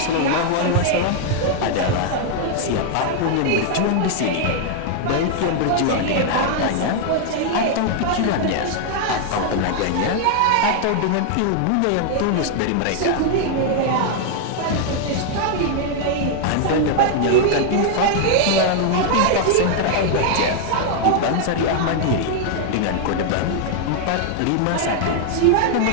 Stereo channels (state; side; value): different; both; correlation 0.00